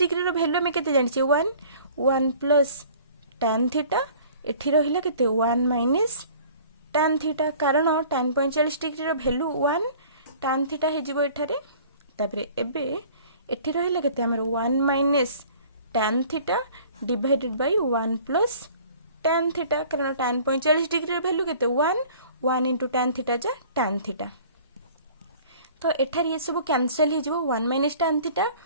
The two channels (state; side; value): inverted; both; correlation -0.49